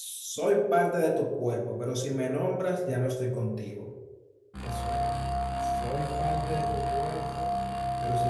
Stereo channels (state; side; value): identical; both; correlation 1.00